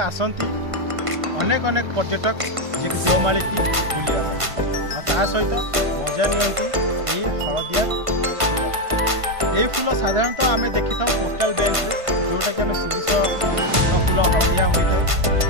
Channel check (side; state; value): left; late; 1.5 ms